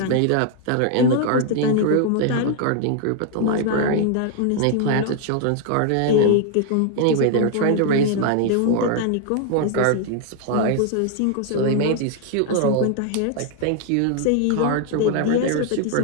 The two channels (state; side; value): different; both; correlation 0.00